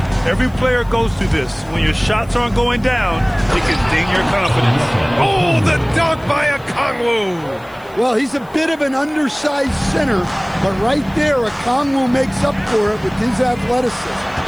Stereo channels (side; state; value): left; noise; hiss, 29 dB below the sound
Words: Every player goes through this. When your shots aren't going down, it can ding your confidence. Oh, the dunk by Okongwu. Well, he's a bit of an undersized center, but right there, Okongwu makes up for it with his athleticism.